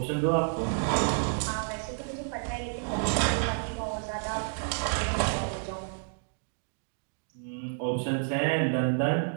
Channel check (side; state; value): left; silent; digital silence